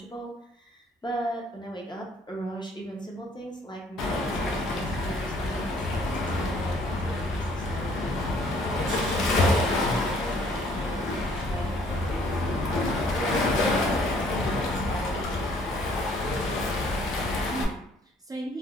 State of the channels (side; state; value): both; normal; correlation 0.60